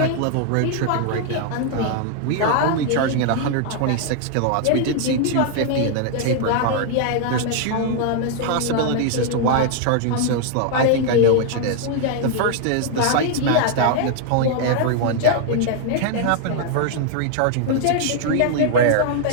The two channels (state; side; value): different; both; correlation 0.00